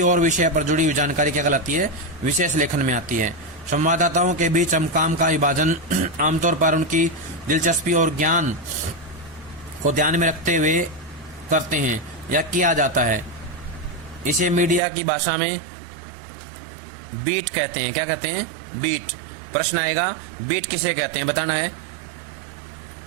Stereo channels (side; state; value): left; drops out; at 14.8 s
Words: और विषय पर जुड़ी हुई जानकारी क्या कहलाती है? विशेष लेखन में आती है। संवाददाताओं के बीच हम काम का विभाजन आमतौर पर उनकी दिलचस्पी और ज्ञान को ध्यान में रखते हुए करते हैं या किया जाता है। इसे मीडिया की भाषा में बीट कहते हैं। क्या कहते हैं? बीट। प्रश्न आएगा, बीट किसे कहते हैं? बताना है।